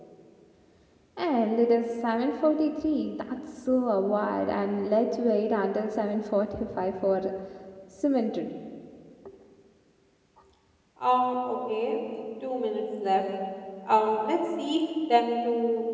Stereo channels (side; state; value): both; identical; correlation 1.00